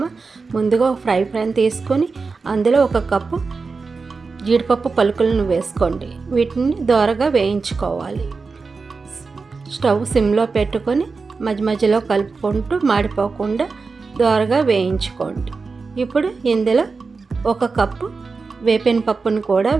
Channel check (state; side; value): quieter; left; 4.4 dB